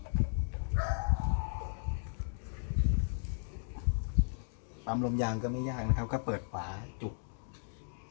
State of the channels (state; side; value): silent; right; digital silence